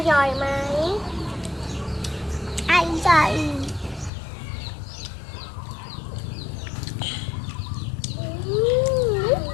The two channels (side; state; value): right; drops out; at 4.1 s